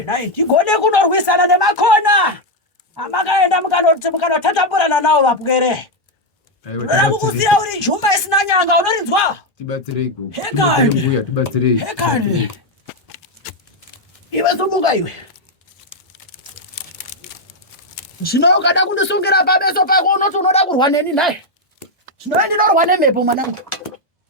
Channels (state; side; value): normal; both; correlation 0.02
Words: naye. Tigone kunorwisana nemakona. Amakaenda mukanotatamburana nawo vapwere. Ndoda kukusiya uri jumba isina nyanga unorinzwa? Tibatsireiko. Hekani. Mbuya tibatsirei. Hekani. Iwe sumuka iwe. Zvino ukada kundisungira pabeso pako unoti unoda kurwa neni naye. Zvino ndinorwa nemhepo mwanangu.